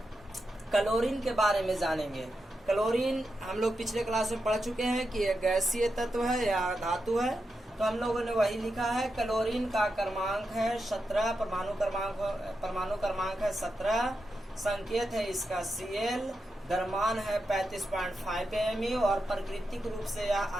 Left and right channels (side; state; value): both; normal; correlation 0.87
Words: के बारे में जानेंगे। क्लोरीन हम लोग पिछले क्लास में पढ़ चुके हैं कि एक गैसीय तत्व है या धातु है। तो हम लोगों ने वही लिखा है। क्लोरीन का क्रमांक है 17, परमाणु क्रमांक है 17, संकेत है इसका Cl, द्रव्यमान है 35.5 AmU और प्राकृतिक रूप से यह